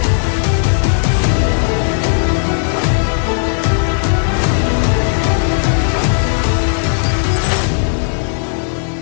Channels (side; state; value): right; silent; 67 dB below the other